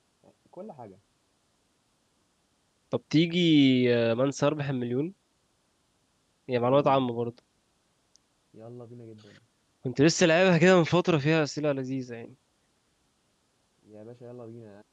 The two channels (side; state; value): both; identical; correlation 1.00